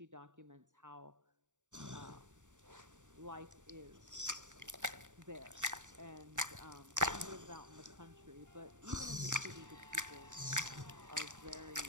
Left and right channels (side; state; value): left; late; 0.86 ms